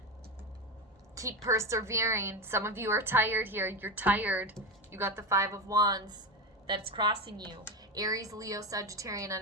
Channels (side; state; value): both; normal; correlation 0.18